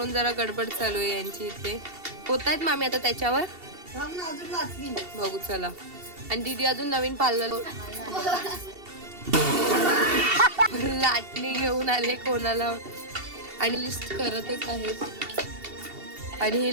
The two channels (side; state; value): left; late; 2.7 ms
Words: जरा गडबड चालू आहे यांची इथे. होत आहेत मामी आता त्याच्यावर. बघू चला. आणि दीदी अजून नवीन पार्लर लाटणी घेऊन आले कोणाला. आणि लिस्ट करतच आहेत. आणि